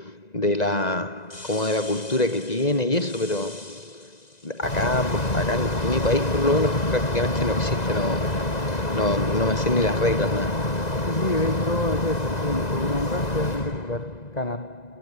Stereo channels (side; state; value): right; late; 2.0 ms